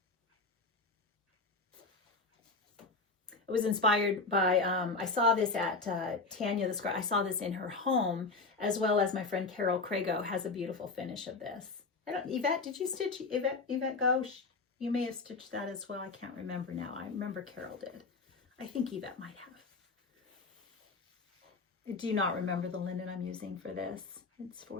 It was inspired by, I saw this at Tanya the Scribe. I saw this in her home, as well as my friend Carol Crago has a beautiful finish of this. Yvette, did you stitch, Yvette Gauche? You may have stitched that as well. I can't remember now. I remember Carol did. I think Yvette might have. I do not remember the linen I'm using for this. It's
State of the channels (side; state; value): right; quieter; 3.9 dB